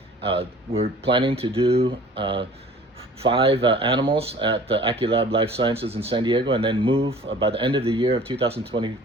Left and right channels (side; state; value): both; normal; correlation 0.48